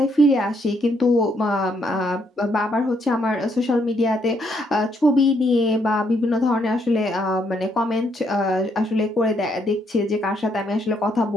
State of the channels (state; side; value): normal; both; correlation 0.73